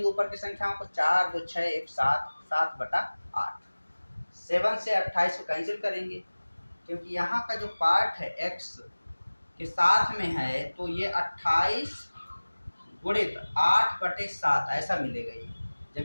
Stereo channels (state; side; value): inverted; both; correlation -1.00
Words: ऊपर की संख्याओं को, 4 2 6 1 7, 7/8, 7 से 28 को कैंसिल करेंगे, क्योंकि यहाँ का जो पार्ट है x के साथ में है तो ये 28 गुणित 8/7 ऐसा मिलेगा। ये